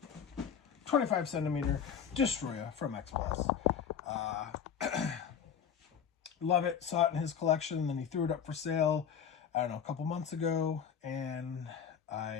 25 centimeter Destroyer from X Plus. Love it. Saw it in his collection, and then he threw it up for sale, I don't know, a couple months ago, and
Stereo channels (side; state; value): right; quieter; 7.7 dB